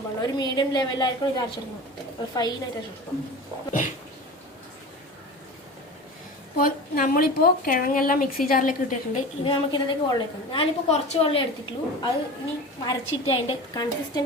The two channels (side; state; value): both; normal; correlation 0.33